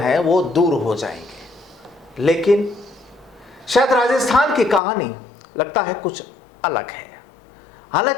वो दूर हो जाएंगे। लेकिन शायद राजस्थान की कहानी लगता है कुछ अलग है।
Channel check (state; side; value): drops out; right; at 4.8 s